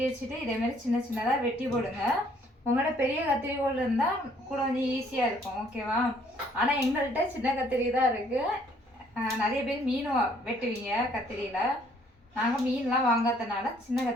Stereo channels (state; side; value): normal; both; correlation 0.63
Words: வச்சுட்டு இதே மாதிரி சின்ன சின்னதாக வெட்டி போடுங்க. உங்களோட பெரிய கத்திரிக்கோள் இருந்தால் கூட கொஞ்சம் ஈஸியாக இருக்கும். ஓகேவா? ஆனால் எங்கள்கிட்ட சின்ன கத்திரி தான் இருக்குது. நிறைய பேர் மீன் வெட்டுவீங்க கத்திரியில். நாங்கள் மீன்லாம் வாங்காதனால சின்ன